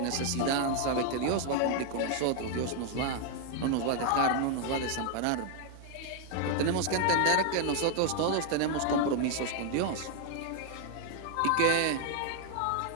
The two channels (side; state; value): both; different; correlation 0.00